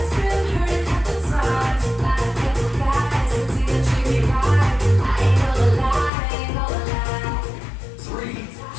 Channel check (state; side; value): drops out; right; at 6.1 s